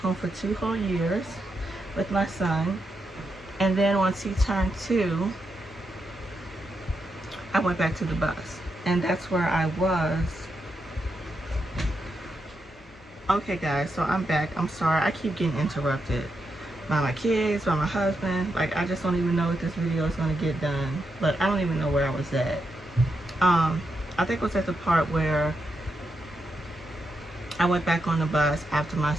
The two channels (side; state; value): both; normal; correlation 0.84